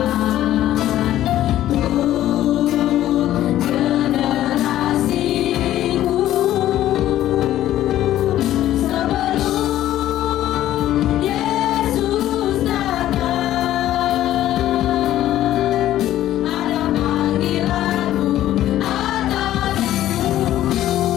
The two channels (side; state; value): right; quieter; 13.2 dB